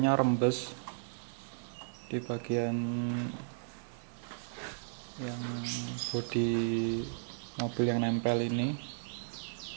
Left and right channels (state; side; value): silent; left; digital silence